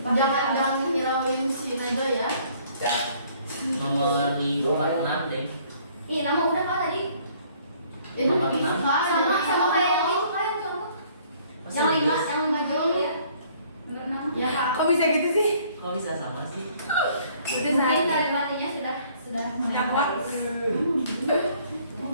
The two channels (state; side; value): inverted; both; correlation -0.60